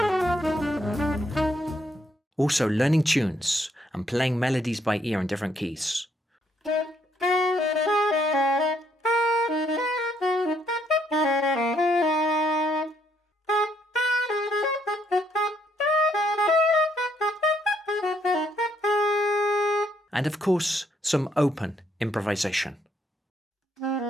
Also learning tunes and playing melodies by ear in different keys. And of course, some open improvisation.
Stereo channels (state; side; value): normal; both; correlation 0.71